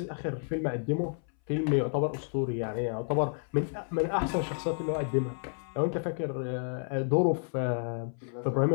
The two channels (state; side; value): silent; right; 57 dB below the other